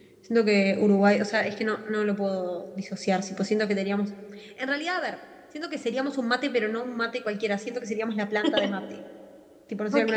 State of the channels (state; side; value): identical; both; correlation 1.00